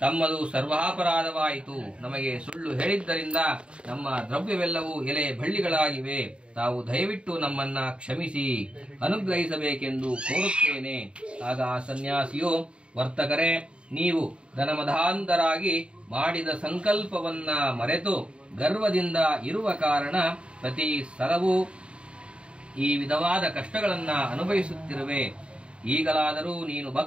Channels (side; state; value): left; late; 0.055 ms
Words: ತಮ್ಮದು ಸರ್ವಾಪರಾಧವಾಯಿತು, ನಮಗೆ ಸುಳ್ಳು ಹೇಳಿದ್ದರಿಂದ ನಮ್ಮ ದ್ರವ್ಯವೆಲ್ಲವೂ ಎಲೆ ಬಳ್ಳಿಗಳಾಗಿವೆ, ತಾವು ದಯವಿಟ್ಟು ನಮ್ಮನ್ನ ಕ್ಷಮಿಸಿ ಅನುಗ್ರಹಿಸಬೇಕೆಂದು ಕೋರುತ್ತೇನೆ. ಆಗ ಆ ಸನ್ಯಾಸಿಯು, ವರ್ತಕರೇ, ನೀವು ಧನಮಧಾಂಧರಾಗಿ ಮಾಡಿದ ಸಂಕಲ್ಪವನ್ನ ಮರೆತು ಗರ್ವದಿಂದ ಇರುವ ಕಾರಣ ಪ್ರತಿ ಸಲವೂ ಈ ವಿಧವಾದ ಕಷ್ಟಗಳನ್ನ ಅನುಭವಿಸುತ್ತಿರುವೆ. ಈಗಲಾದರೂ ನೀನು